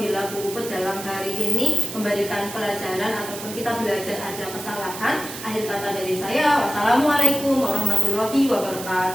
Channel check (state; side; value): noise; right; hiss, 10 dB below the sound